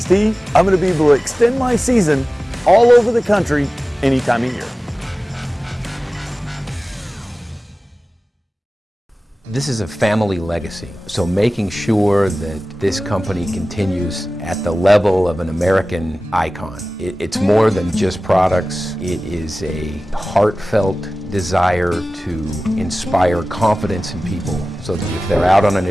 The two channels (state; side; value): normal; both; correlation 0.97